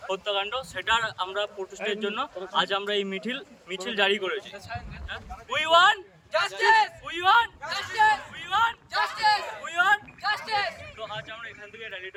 হত্যাকাণ্ড, সেটার আমরা প্রতিষ্ঠার জন্য আজ আমরা এই মিছিল জারি করেছি। We want justice, we want justice, we want justice, we want justice. তো আজ আমরা এখান থেকে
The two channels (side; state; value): both; identical; correlation 1.00